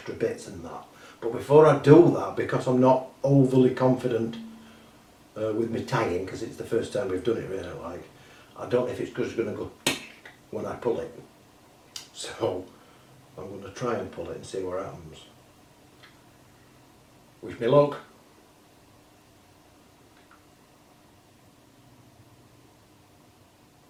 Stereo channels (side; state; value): both; identical; correlation 1.00